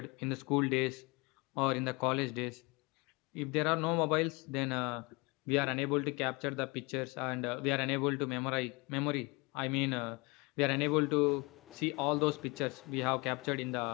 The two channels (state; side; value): quieter; right; 27.1 dB